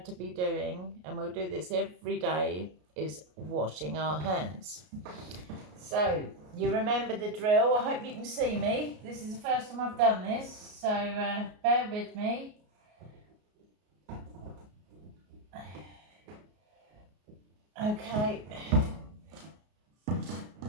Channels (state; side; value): late; left; 33 ms